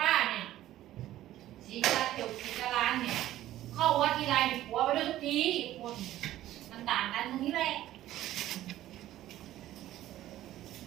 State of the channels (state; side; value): quieter; left; 14.0 dB